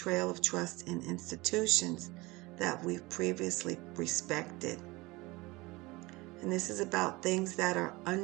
of trust in institutions that we've previously respected. And this is about things that are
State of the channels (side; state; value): left; quieter; 22.4 dB